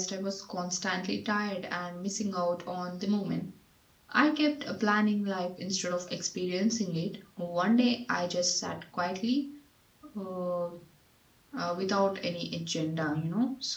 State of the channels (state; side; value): identical; both; correlation 1.00